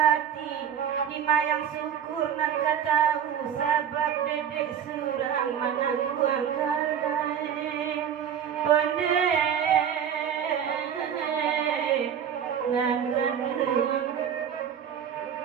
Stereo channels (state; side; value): quieter; left; 8.6 dB